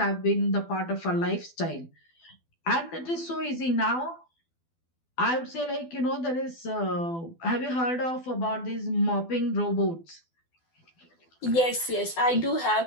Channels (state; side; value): late; right; 12 ms